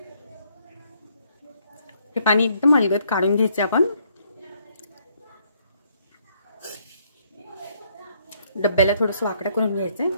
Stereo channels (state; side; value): inverted; both; correlation -0.69